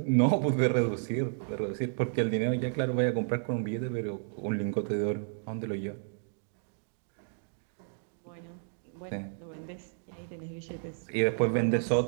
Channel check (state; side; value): silent; left; digital silence